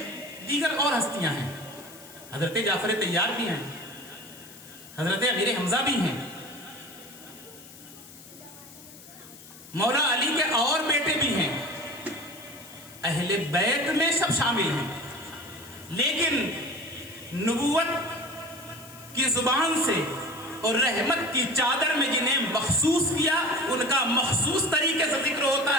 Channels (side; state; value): left; noise; hiss, 19 dB below the sound